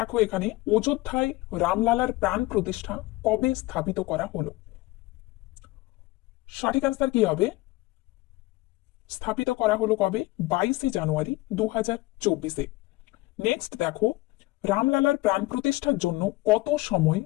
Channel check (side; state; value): right; quieter; 20.3 dB